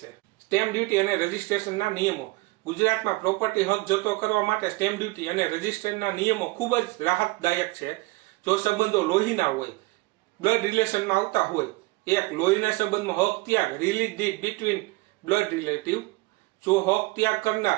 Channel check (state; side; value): quieter; left; 22.5 dB